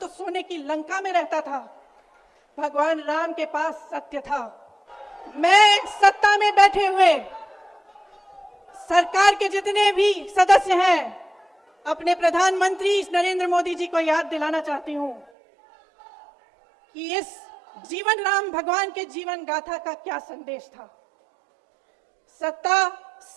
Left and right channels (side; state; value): left; drops out; at 15.3 s